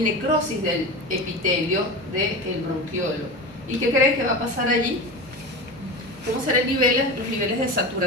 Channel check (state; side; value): normal; both; correlation 0.26